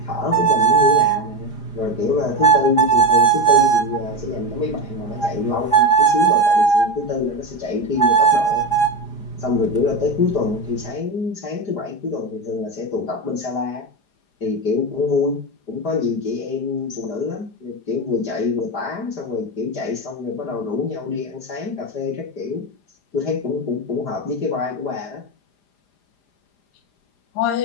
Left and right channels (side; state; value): right; late; 4.9 ms